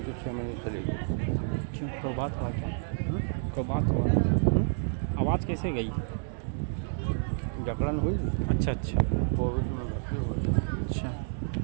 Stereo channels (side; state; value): left; silent; digital silence